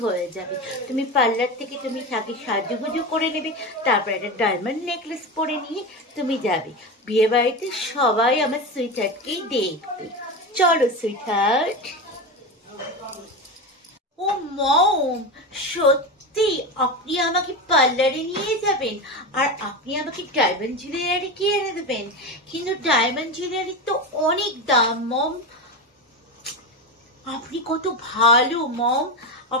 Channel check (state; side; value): normal; both; correlation 0.20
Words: হয়ে যাবে। তুমি পার্লার থেকে তুমি আগে সাজুগুজু করে নেবে, তারপর একটা ডায়মন্ড নেকলেস পরে নিয়ে তুমি যাবে বিয়ে বাড়িতে, সবাই আমার সুইটহার্টকেই দেখবে। চলো সুইটহার্ট। ও মম, সত্যি আপনি আমাকে পার্লারে নিয়ে যাবেন আর আপনি আমাকে ডায়মন্ড জুয়েলারি কিনে দেবেন? কিন্তু ডায়মন্ড জুয়েলারি তো অনেক দাম মম। আপনি কত ভালো মম,